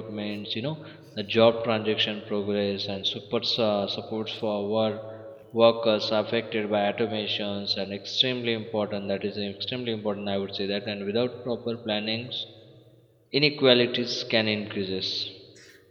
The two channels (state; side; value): identical; both; correlation 1.00